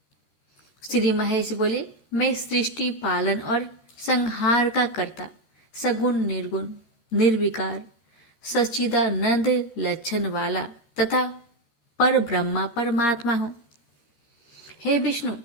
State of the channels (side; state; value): right; late; 13 ms